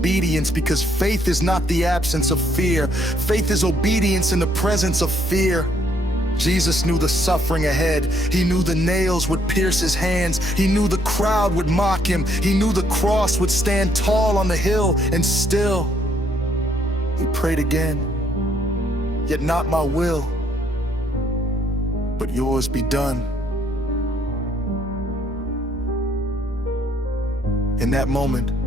because faith is not the absence of fear. Faith is obedience in the presence of fear. Jesus knew the suffering ahead. He knew the nails would pierce his hands. He knew the crowd would mock him. He knew the cross would stand tall on the hill, and still, he prayed again. "Yet not my will, but yours be done." In that moment,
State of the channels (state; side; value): normal; both; correlation 0.69